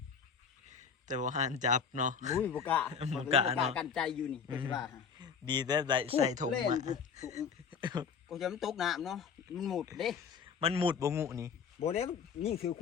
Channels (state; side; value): quieter; right; 6.4 dB